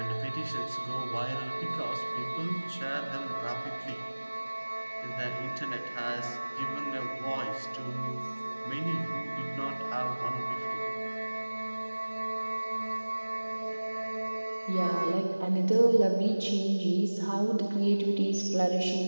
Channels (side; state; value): both; inverted; correlation -1.00